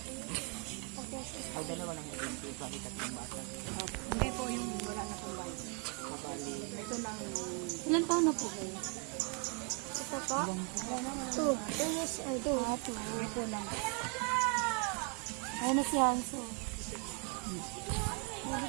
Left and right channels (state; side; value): quieter; left; 36.3 dB